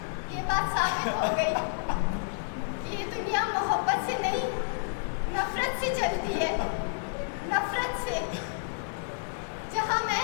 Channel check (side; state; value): right; silent; digital silence